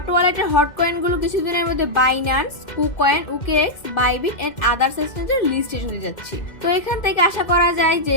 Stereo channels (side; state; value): right; late; 2.1 ms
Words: ওয়ালেটের হট কয়েন গুলো কিছুদিনের মধ্যে Binance, KuCoin, OKX, Bybit and others এক্সচেঞ্জের লিস্টে চলে যাচ্ছে। তো এখান থেকে আশা করা যায় যে